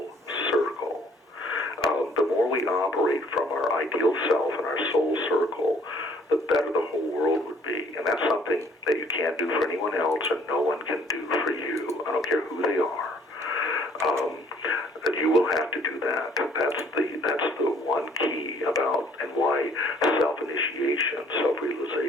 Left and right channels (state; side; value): normal; both; correlation 0.59